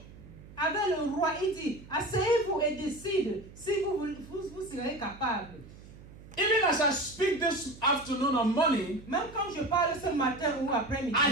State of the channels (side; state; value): right; noise; hum, 19 dB below the sound